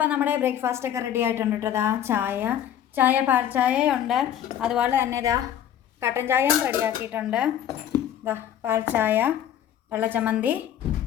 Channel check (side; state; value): right; quieter; 10.4 dB